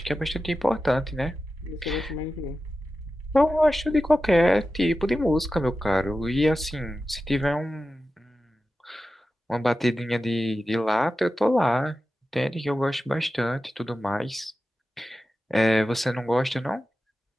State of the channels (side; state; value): both; normal; correlation 0.93